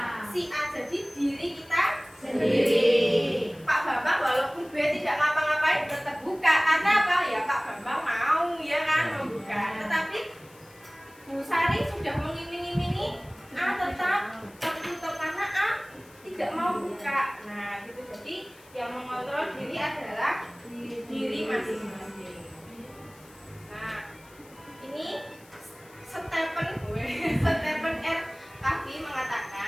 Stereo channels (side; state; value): left; noise; hiss, 25 dB below the sound